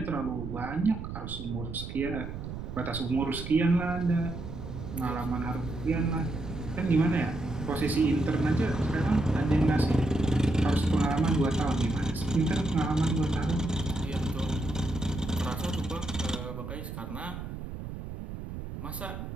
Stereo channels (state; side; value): noise; right; rumble, 8 dB below the sound